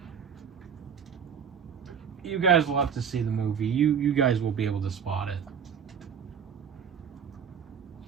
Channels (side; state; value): left; quieter; 7.4 dB